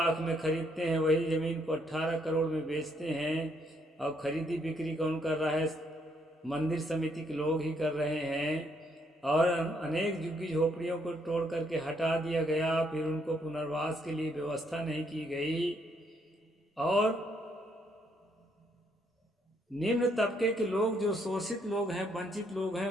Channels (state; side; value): normal; both; correlation 0.72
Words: में खरीदते हैं, वही जमीन को 18 करोड़ में बेचते हैं, और खरीदी बिक्री कौन कर रहा है? मंदिर समिति के लोग ही कर रहे हैं। और अनेक झुग्गी झोपड़ियों को तोड़ करके हटा दिया गया, फिर उनको पुनर्वास के लिए व्यवस्था नहीं की गई, और निम्न तबके के लोग, जो शोषित लोग हैं, वंचित लोग हैं,